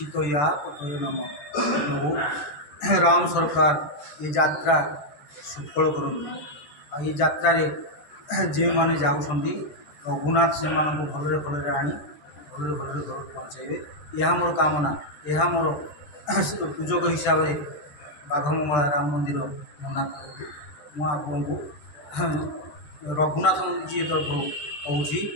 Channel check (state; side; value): late; right; 13 ms